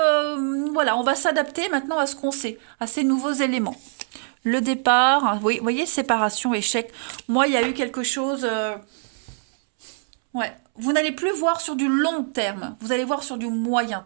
voilà, on va s'adapter maintenant à ce qu'on sait, à ces nouveaux éléments. Le départ, vous voyez, séparation, échec. Moi, il y a eu quelque chose... vous n'allez plus voir sur du long terme, vous allez voir sur du moyen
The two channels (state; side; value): silent; left; 63 dB below the other